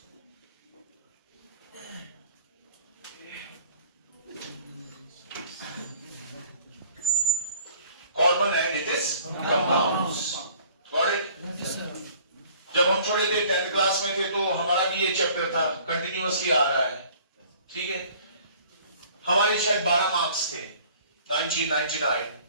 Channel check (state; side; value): inverted; both; correlation -0.53